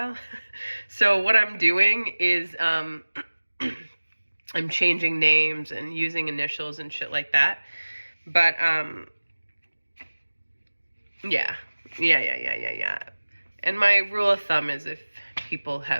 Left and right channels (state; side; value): inverted; both; correlation -1.00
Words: So what I'm doing is I'm changing names and using initials and shit like that. But yeah. And my rule of thumb is if people